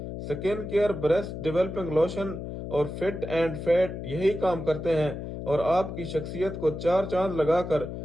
سکن کیئر بریسٹ ڈیولپنگ لوشن اور فٹ اینڈ فیٹ یہی کام کرتے ہیں اور آپ کی شخصیت کو 4 چاند لگا کر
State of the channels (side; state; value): left; noise; hum, 7 dB below the sound